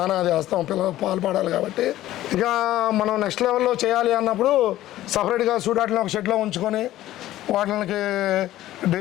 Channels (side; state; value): right; quieter; 14.4 dB